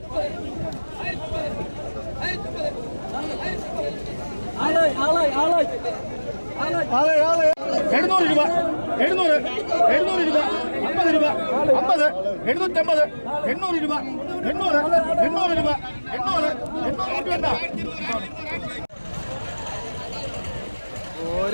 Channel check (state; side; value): inverted; both; correlation -1.00